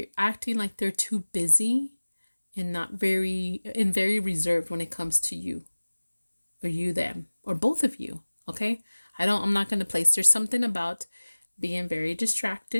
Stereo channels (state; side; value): inverted; both; correlation -1.00